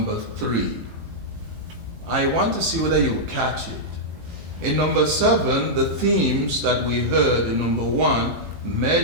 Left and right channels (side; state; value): left; late; 18 ms